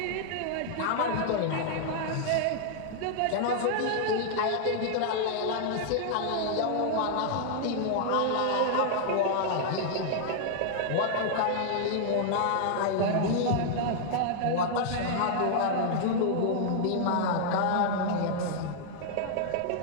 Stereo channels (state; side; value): different; both; correlation -0.01